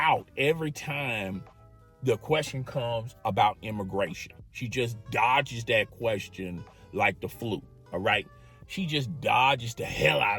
every time the question comes about immigration. She just dodges that question like the flu, all right? She just dodges the hell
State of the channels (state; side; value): identical; both; correlation 1.00